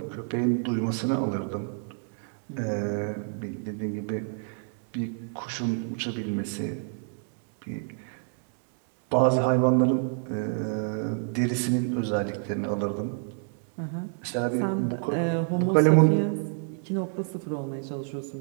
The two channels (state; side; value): silent; left; 59 dB below the other